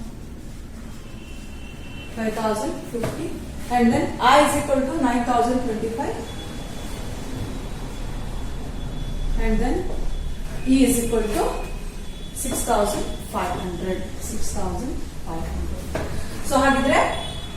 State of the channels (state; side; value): identical; both; correlation 1.00